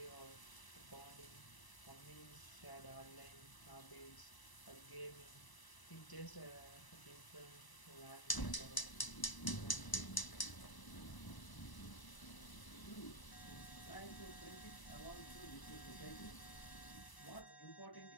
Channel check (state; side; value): late; right; 1.0 ms